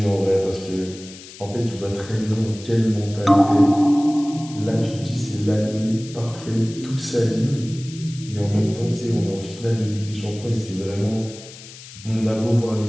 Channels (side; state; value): left; noise; hiss, 17 dB below the sound